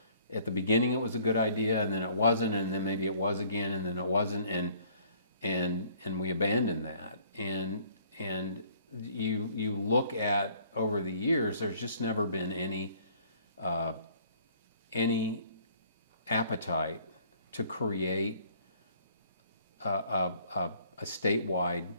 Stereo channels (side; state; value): both; inverted; correlation -0.58